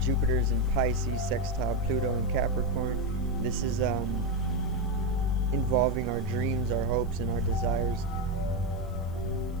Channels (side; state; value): left; noise; hiss, 28 dB below the sound